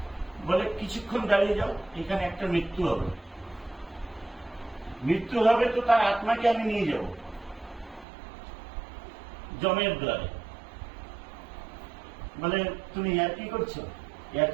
বলে কিছুক্ষণ দাঁড়িয়ে যাও, এখানে একটা মৃত্যু হবে, তো তার আত্মাকে আমি নিয়ে যাব যমের দ্বারে। বলে তুমি কি করছো?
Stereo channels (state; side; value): drops out; left; at 8.1 s